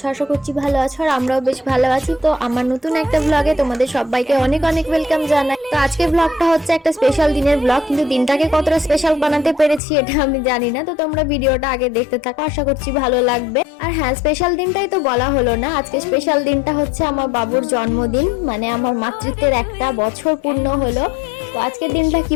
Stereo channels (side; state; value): right; drops out; at 9.8 s